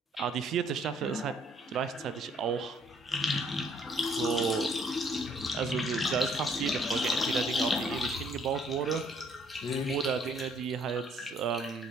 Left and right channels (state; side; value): normal; both; correlation 0.64